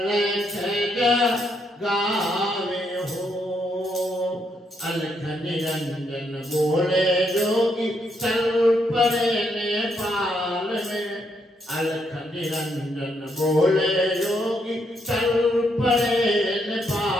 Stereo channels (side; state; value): both; normal; correlation 0.76